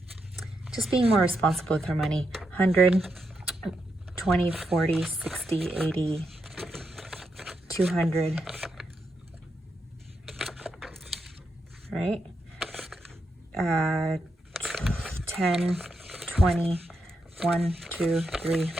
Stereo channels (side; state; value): both; normal; correlation 0.83